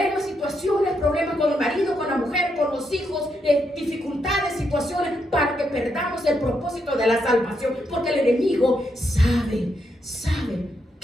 situaciones, problemas con el marido, con la mujer, con los hijos, dificultades, situaciones, para que perdamos el propósito de la salvación, porque el enemigo sabe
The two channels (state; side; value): normal; both; correlation 0.80